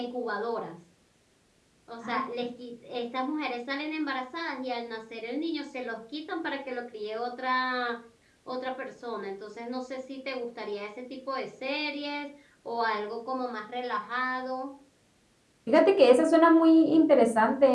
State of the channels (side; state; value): both; identical; correlation 1.00